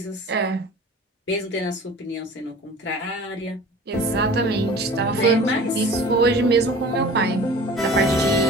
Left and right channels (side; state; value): both; normal; correlation 0.42